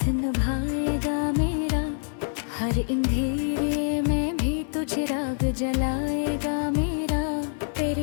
निभाएगा मेरा, हर अंधेरे में भी तू चिराग जलाएगा मेरा। फिर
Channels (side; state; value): right; silent; 61 dB below the other